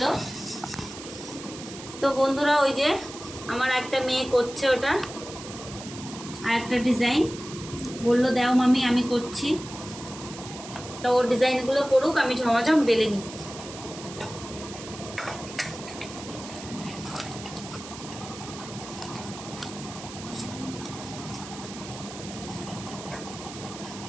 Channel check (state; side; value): noise; right; hiss, 13 dB below the sound